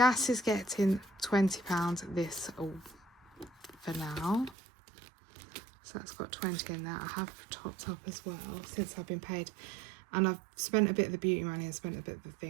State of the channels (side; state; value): left; drops out; at 4.5 s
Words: is getting £20 this for now, so that's got 20 in there. I have topped up as well since I've been paid, and I've spent a bit of the beauty money and spent a bit of the